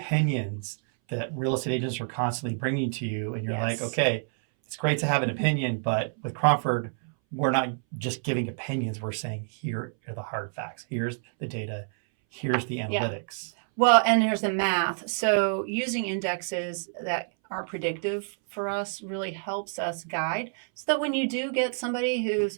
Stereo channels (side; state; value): left; silent; 60 dB below the other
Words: that real estate agents are constantly bringing to you. And you're like, Yes. okay, it's great to have an opinion, but with Cromford, we're not just giving opinions. We're saying, here are the hard facts. Here's the data. Here's the analytics. Well, and here's the math. So using indexes that are predictive for us really helps us guide so that when you do get somebody